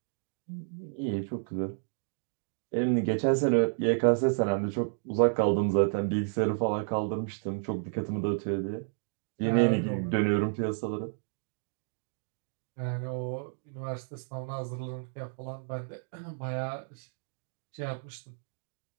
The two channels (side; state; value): left; silent; digital silence